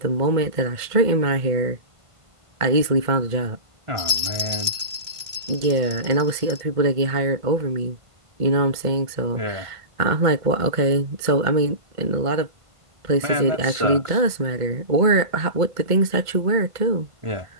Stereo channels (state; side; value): late; left; 1.5 ms